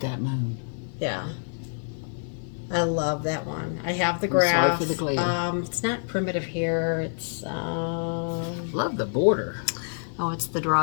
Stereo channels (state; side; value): silent; right; 60 dB below the other